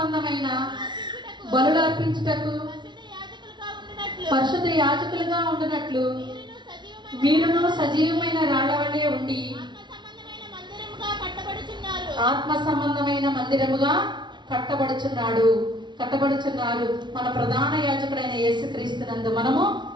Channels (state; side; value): late; left; 0.22 ms